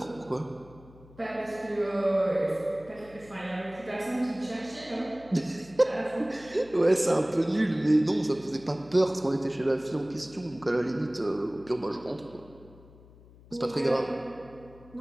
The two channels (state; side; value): noise; left; hum, 23 dB below the sound